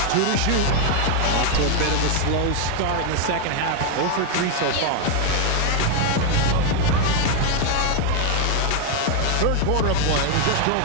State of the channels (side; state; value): both; different; correlation 0.01